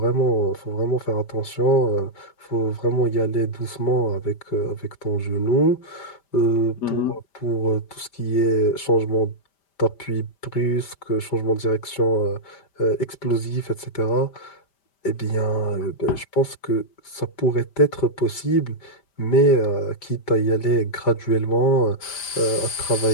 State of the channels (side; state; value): right; late; 5.1 ms